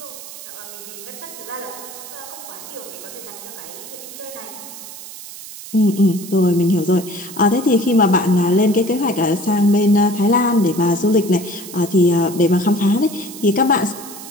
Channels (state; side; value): noise; right; hiss, 14 dB below the sound